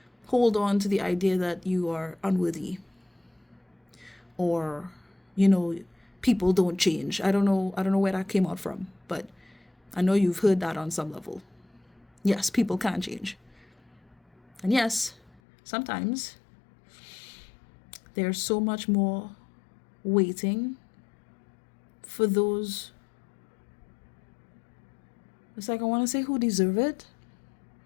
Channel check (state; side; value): drops out; right; at 15.4 s